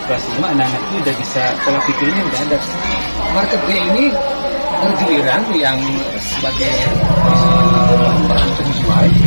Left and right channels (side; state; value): both; inverted; correlation -1.00